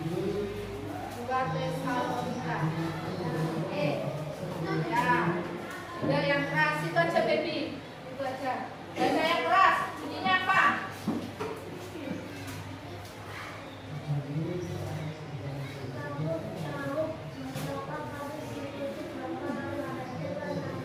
Tesalonika. Oke. Ya, yang keras itu aja baby. Itu aja. Baca yang keras. Bunyinya apa?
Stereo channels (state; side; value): identical; both; correlation 1.00